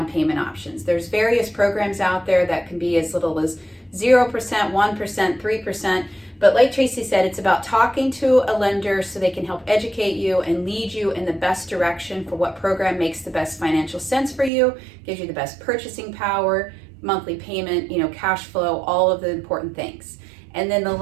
payment options. There's various programs out there that can be as little as 0%, 1%, 3%. But like Tracey said, it's about talking to a lender so they can help educate you and lead you in the best direction for what program makes the best financial sense for you, gives you the best purchasing power, monthly payment, cash flow, all of the important things. And then the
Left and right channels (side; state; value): left; drops out; at 14.5 s